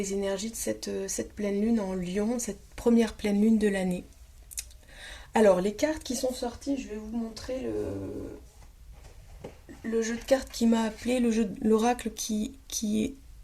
énergies de cette pleine lune en Lion, cette première pleine lune de l'année. Alors les cartes qui sont sorties, je vais vous montrer le jeu de cartes qui m'a appelé, le jeu de l'oracle qui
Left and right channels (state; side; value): identical; both; correlation 1.00